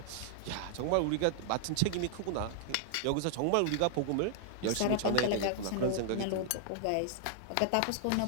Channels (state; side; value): different; both; correlation -0.01